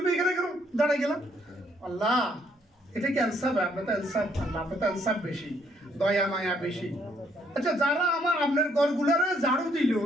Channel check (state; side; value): normal; both; correlation 0.69